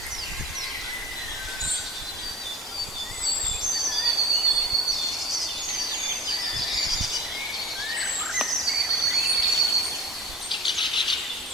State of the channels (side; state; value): both; normal; correlation 0.39